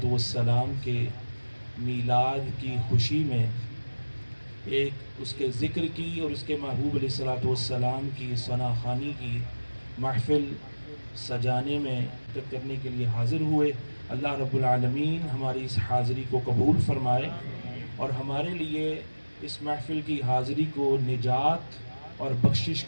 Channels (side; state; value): both; inverted; correlation -1.00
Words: والسلام کے میلاد کی خوشی میں ایک اس کے ذکر کی اور اس کے محبوب علیہ الصلاۃ والسلام کی ثنا خوانی کی محفل سجانے میں شرکت کرنے کے لیے حاضر ہوئے. اللہ رب العالمین ہماری اس حاضری کو قبول فرمائے اور ہمارے لیے اس محفل کی حاضری کو نجات اور بخشش